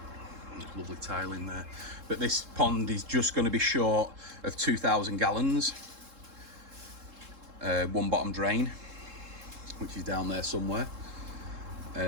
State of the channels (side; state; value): left; late; 3.7 ms